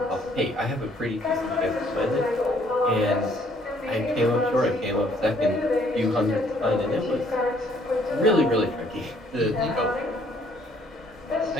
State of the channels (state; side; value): normal; both; correlation 0.63